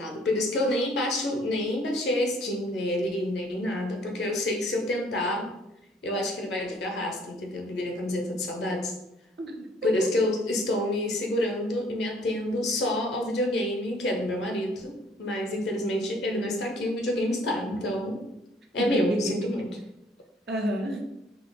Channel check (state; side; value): normal; both; correlation 0.60